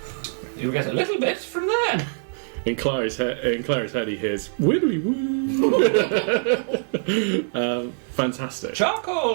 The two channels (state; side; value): silent; left; digital silence